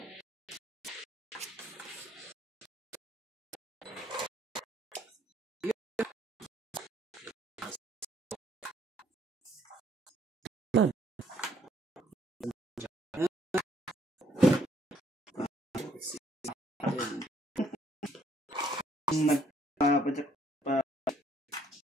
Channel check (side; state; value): both; normal; correlation 0.66